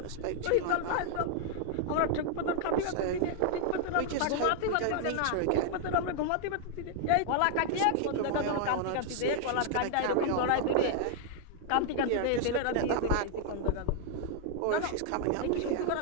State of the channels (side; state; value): both; different; correlation 0.00